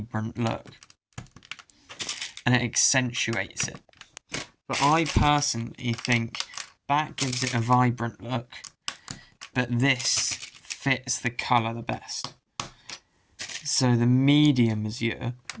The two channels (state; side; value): identical; both; correlation 1.00